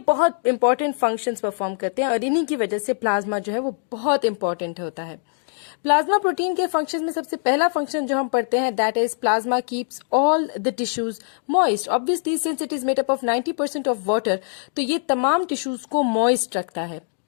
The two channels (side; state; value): right; silent; digital silence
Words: बहुत इंपॉर्टेंट फंक्शंस परफॉर्म करते हैं और इन्हीं की वजह से प्लाज्मा जो है वो बहुत इंपॉर्टेंट होता है। प्लाज्मा प्रोटीन के फंक्शंस में सबसे पहला फंक्शन जो हम पढ़ते हैं that is plasma keeps all the tissues moist. Obviously since it is made up of 90% of water, तो ये तमाम टिश्यूज को मॉइस्ट रखता है।